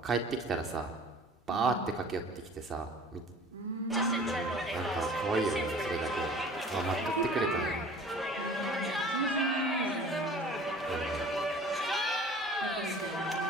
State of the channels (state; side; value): normal; both; correlation 0.46